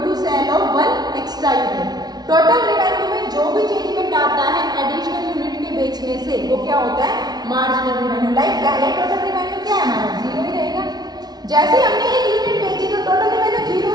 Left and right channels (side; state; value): left; late; 0.19 ms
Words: to sale of one extra unit. Total revenue में जो भी changement आता है additional unit के बेचने से, वो क्या होता है, मार्जिनल रिवेन्यू. लाइक पहले टोटल रिवेन्यू क्या है हमारा, 0 ही रहेगा. जैसे हमने एक यूनिट बेची तो टोटल रिवेन्यू 0